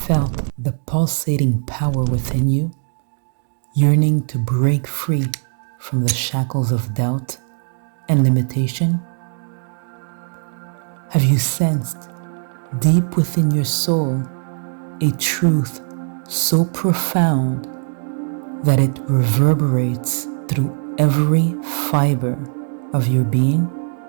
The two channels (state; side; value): silent; left; 57 dB below the other